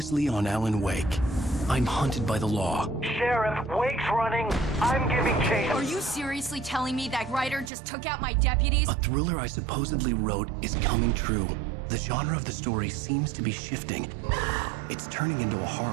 on Alan Wake, I'm hunted by the law. Sheriff, Wake's running. I'm giving chase. Are you seriously telling me that writer just took out my deputies? A thriller I supposedly wrote is coming true. The genre of the story seems to be shifting. It's turning into a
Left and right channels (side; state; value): left; drops out; at 7.7 s